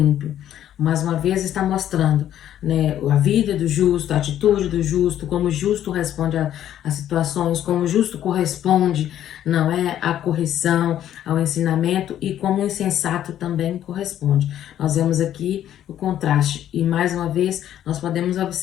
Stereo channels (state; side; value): quieter; right; 11.3 dB